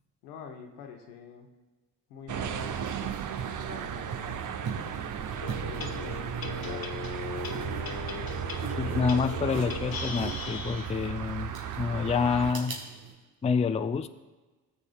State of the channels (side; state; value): both; normal; correlation 0.48